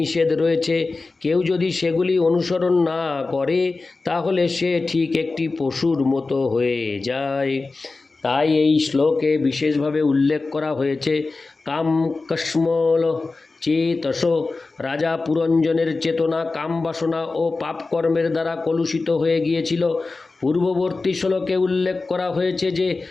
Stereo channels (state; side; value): quieter; right; 3.7 dB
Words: রয়েছে। কেউ যদি সেগুলি অনুসরণ না করে তাহলে সে ঠিক একটি পশুর মতো হয়ে যায়। তাই এই শ্লোকে বিশেষভাবে উল্লেখ করা হয়েছে কাম কস্মল চেতস। রাজা পুরঞ্জনের চেতনা কামবাসনা ও পাপকর্মের দ্বারা কলুষিত হয়ে গিয়েছিল। পূর্ববর্তী শ্লোকে উল্লেখ করা হয়েছে যে